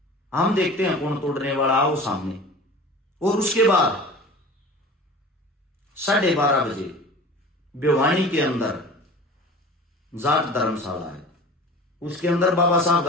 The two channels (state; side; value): normal; both; correlation 0.39